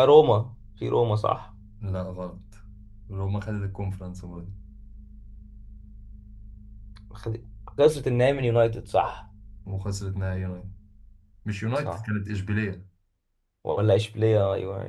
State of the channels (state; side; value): identical; both; correlation 1.00